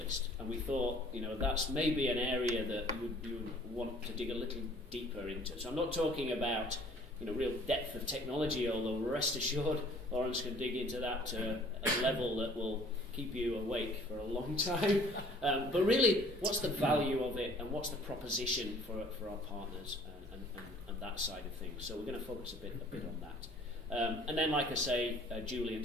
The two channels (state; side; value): normal; both; correlation 0.54